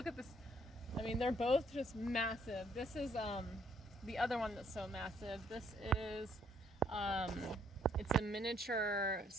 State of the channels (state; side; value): normal; both; correlation 0.67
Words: at this. I mean, they're both just massive. This is the other one that's so massive. This is it's a miniature